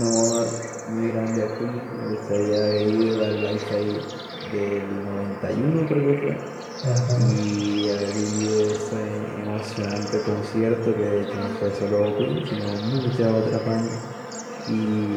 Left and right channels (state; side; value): identical; both; correlation 1.00